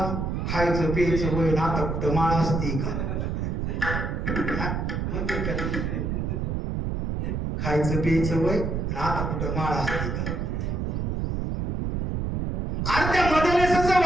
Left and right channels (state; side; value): noise; right; rumble, 1 dB below the sound